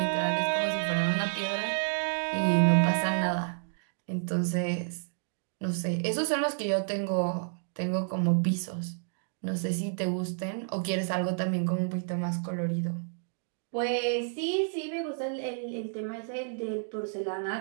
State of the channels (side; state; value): left; silent; digital silence